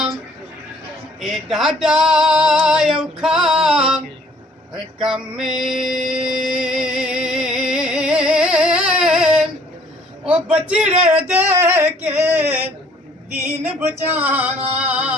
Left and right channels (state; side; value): normal; both; correlation 0.59